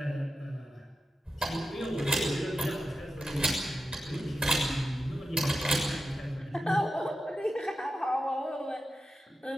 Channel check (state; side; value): normal; both; correlation 0.92